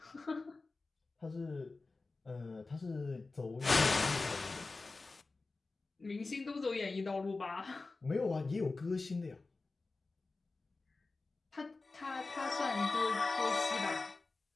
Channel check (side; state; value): right; quieter; 3.6 dB